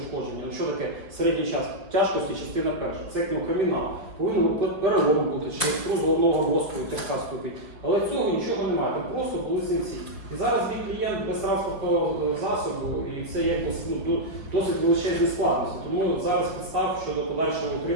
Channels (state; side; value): late; left; 5.0 ms